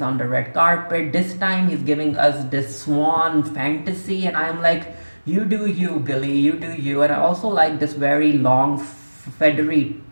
on the red carpet. This time he's giving us this swan fantasy, and I'm like, you do you, Billy, you do you. And I also like this very long feathery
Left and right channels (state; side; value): inverted; both; correlation -1.00